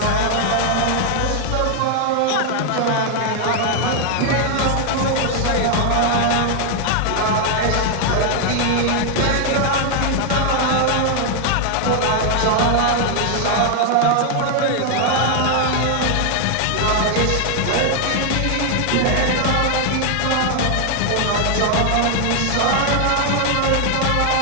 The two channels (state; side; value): different; both; correlation 0.00